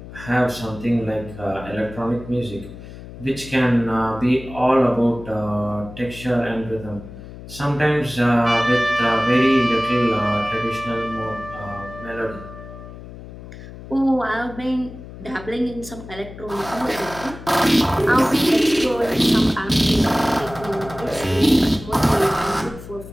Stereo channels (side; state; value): left; noise; hum, 14 dB below the sound